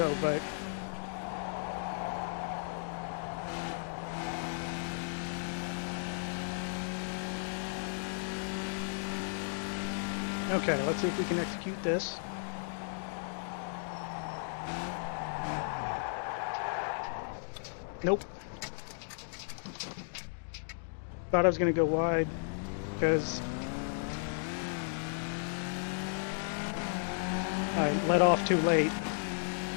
but... Okay, let's see if we can execute this. Nope. Thought I was going to go wide, because I let off too late.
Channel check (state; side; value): silent; right; digital silence